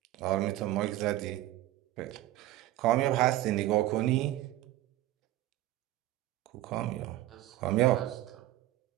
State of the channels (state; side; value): quieter; left; 15.2 dB